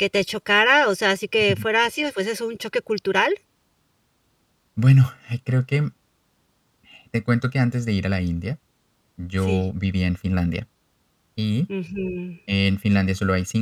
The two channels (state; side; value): identical; both; correlation 1.00